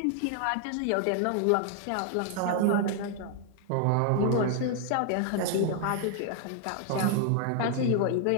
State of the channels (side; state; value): both; different; correlation 0.00